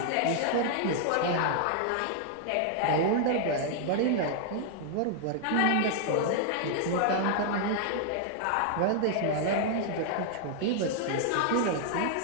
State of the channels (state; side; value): different; both; correlation 0.00